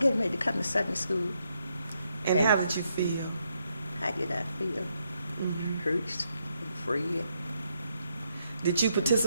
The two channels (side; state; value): both; inverted; correlation -0.78